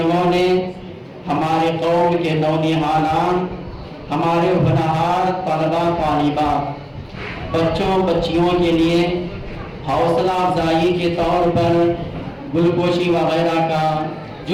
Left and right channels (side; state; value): both; identical; correlation 1.00